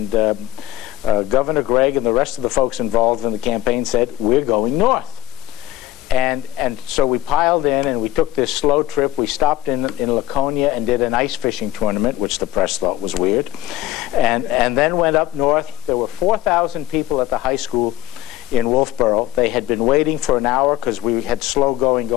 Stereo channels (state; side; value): quieter; right; 13.1 dB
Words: Governor Gregg and the rest of the folks involved in the campaign said, we're going north. And so we piled in and we took this slow trip. We stopped in Laconia and did an ice fishing tournament, which the press thought was weird. And then went up north. There were 4,000 people at the high school in Wolfboro. They had been waiting for an hour because we had slow